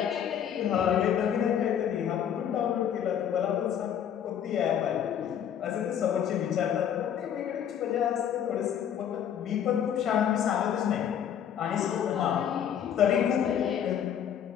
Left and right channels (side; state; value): right; quieter; 9.2 dB